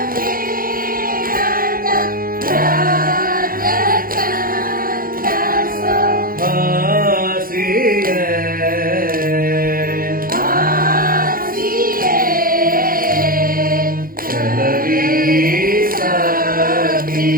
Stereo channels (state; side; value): late; left; 0.42 ms